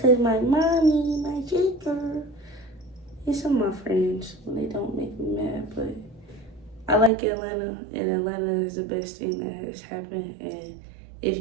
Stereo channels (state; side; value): drops out; left; at 7.1 s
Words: my mommy, my sister, and some of my friends, when they don't make me mad. But I like Atlanta, and Atlanta is the best thing that has happened. And